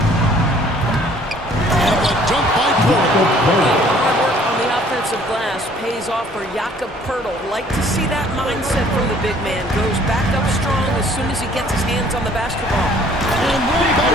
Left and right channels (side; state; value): both; normal; correlation 0.57